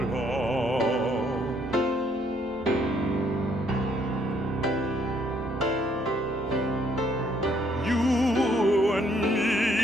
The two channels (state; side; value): normal; both; correlation 0.68